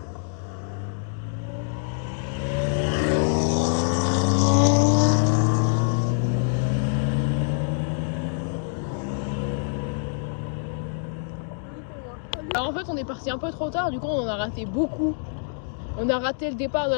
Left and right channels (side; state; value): right; silent; digital silence